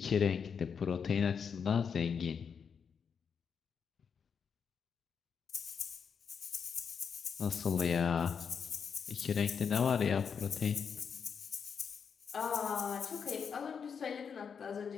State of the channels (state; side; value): quieter; right; 6.6 dB